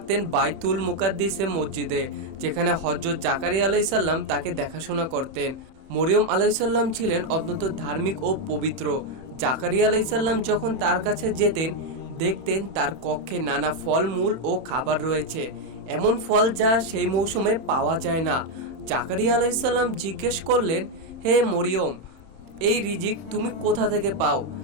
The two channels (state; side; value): late; left; 31 ms